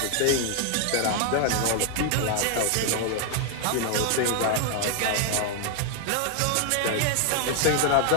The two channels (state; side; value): different; both; correlation 0.01